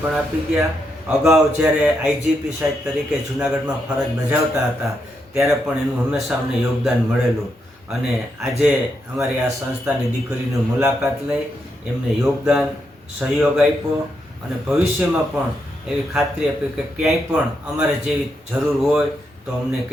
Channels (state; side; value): normal; both; correlation 0.81